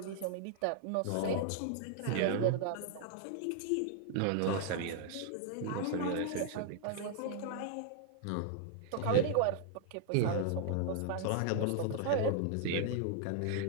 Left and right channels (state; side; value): different; both; correlation 0.00